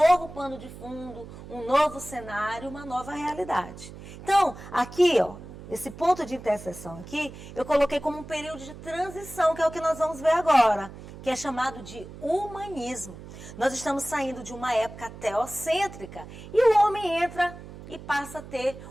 pano de fundo, um novo cenário, uma nova realidade. Então, aqui, esse ponto de interseção aqui, eu coloquei como um período de transição, que é o que nós vamos ver agora, que é chamado de humanismo. Nós estamos saindo de uma época teocêntrica e o homem entra e passa a ter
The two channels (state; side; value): noise; right; hum, 15 dB below the sound